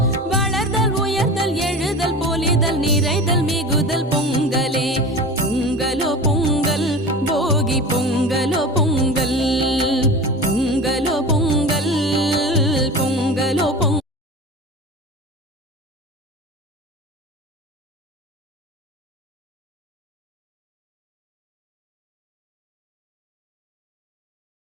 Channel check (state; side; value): normal; both; correlation 0.33